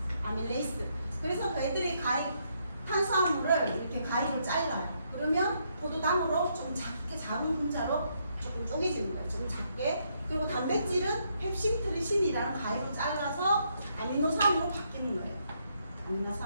아밀레이스. 그래서 저희들이 탄수화물을 이렇게 가위로 잘라요. 그러면 포도당으로 좀 작은 분자로 조금 쪼개지는 거예요. 좀 작게. 그리고 단백질은 펩신트리신이라는 가위로 잘라서 아미노산으로 바뀌는 거예요.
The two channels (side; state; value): both; inverted; correlation -0.75